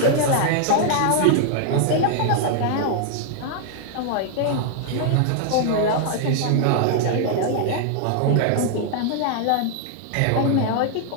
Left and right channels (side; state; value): both; different; correlation 0.00